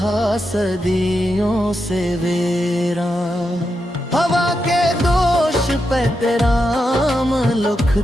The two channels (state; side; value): normal; both; correlation 0.86